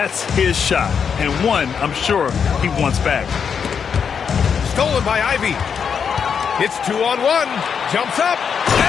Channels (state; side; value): quieter; right; 6.8 dB